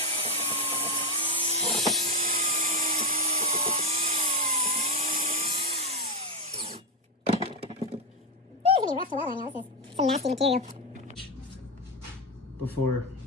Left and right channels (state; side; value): normal; both; correlation 0.07